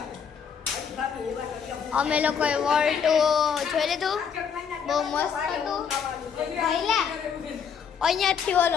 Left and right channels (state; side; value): quieter; right; 7.0 dB